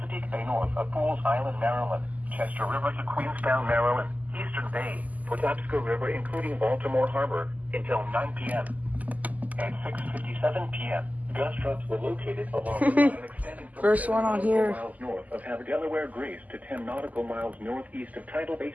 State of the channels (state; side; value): late; left; 0.078 ms